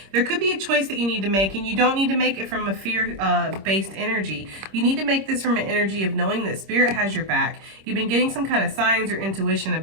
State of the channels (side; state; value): left; late; 26 ms